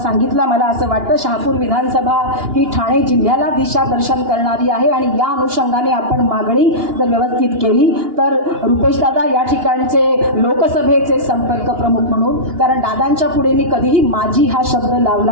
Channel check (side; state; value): left; late; 2.8 ms